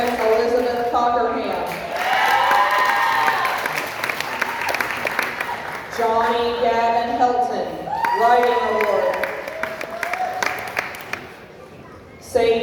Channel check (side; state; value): both; identical; correlation 1.00